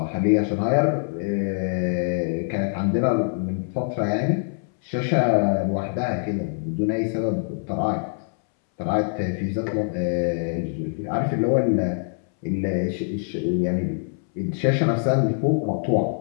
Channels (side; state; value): right; silent; 63 dB below the other